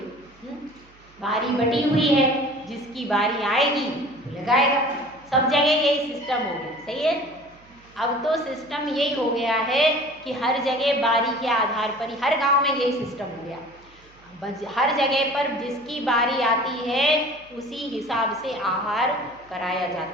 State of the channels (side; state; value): right; noise; hum, 28 dB below the sound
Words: बारी बटी हुई है, जिसकी बारी आएगी लगाएगा। सब जगह यही सिस्टम हो गया, सही है। अब तो सिस्टम यही हो गया है कि हर जगह बारी के आधार पर ही, हर गांव में यही सिस्टम हो गया। हर जगह पर जिसकी बारी आती है उसी हिसाब से आहार कराया